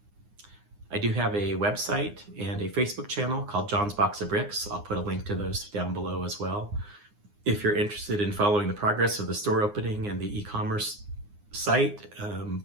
I do have a website and a Facebook channel called John's Box of Bricks. I'll put a link to those down below as well. If you're interested in following the progress of the store opening and the e-commerce site,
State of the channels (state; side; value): late; left; 9.7 ms